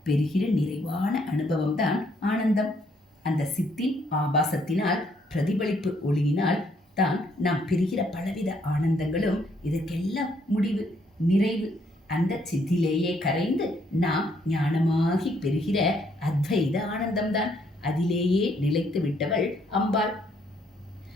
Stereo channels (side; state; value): both; normal; correlation 0.69